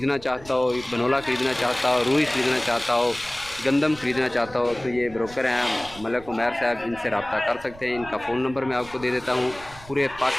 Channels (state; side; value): noise; right; rumble, 19 dB below the sound